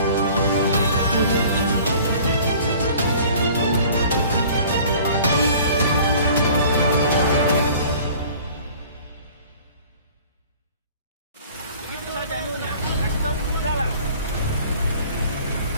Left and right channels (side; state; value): both; inverted; correlation -0.49